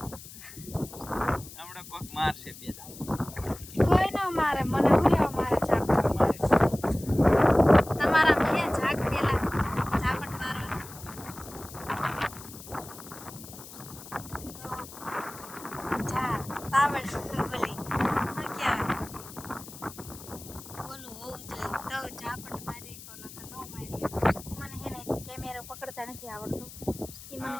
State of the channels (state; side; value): noise; left; hiss, 15 dB below the sound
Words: હમણાં કોક મારશે બે દાવ કોઈ ન મારે મને હું લેવા મારે ઝાપટ તમારા બે ઝાક પેલા ઝાપટ મારો જા તાવડ બોલી હું ક્યાં બોલું હોવું જોઈએ તો ઝાપટ મારી કોનો કે નો મારી મને હે ને કેમેરો પકડતા નથી આવડતું એ મને